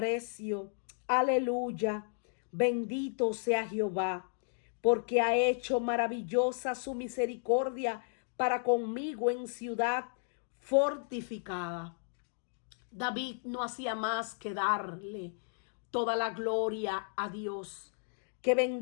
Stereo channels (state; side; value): silent; right; digital silence